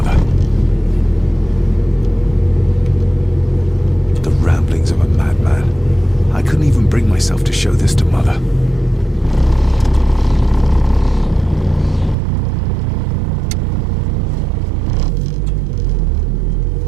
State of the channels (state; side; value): drops out; left; at 12.2 s